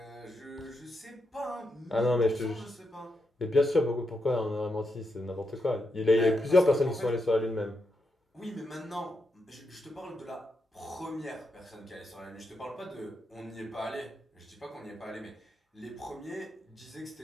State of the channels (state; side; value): normal; both; correlation 0.83